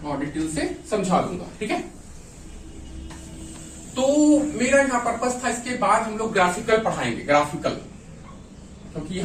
और डिटेल से समझा दूंगा। ठीक है, तो मेरा यहाँ पर्पस था, इसके बाद हम लोग ग्राफिकल पढ़ाएंगे, ग्राफिकल, क्योंकि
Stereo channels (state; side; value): identical; both; correlation 1.00